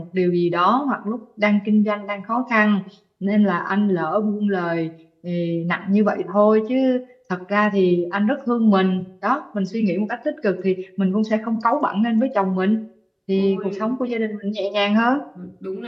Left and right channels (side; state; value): both; identical; correlation 1.00